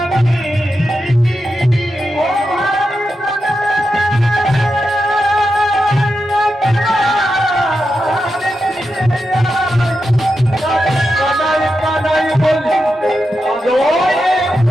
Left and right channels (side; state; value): both; normal; correlation 0.88